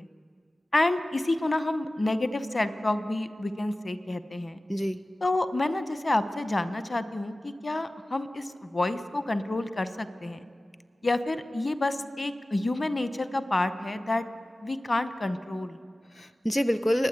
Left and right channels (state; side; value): normal; both; correlation 0.97